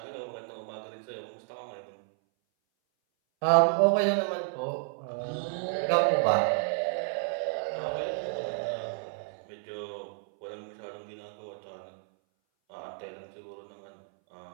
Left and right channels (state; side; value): silent; left; 57 dB below the other